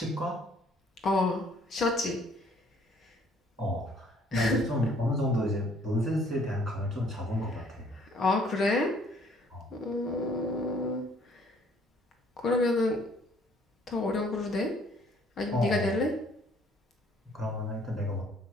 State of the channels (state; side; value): normal; both; correlation 0.60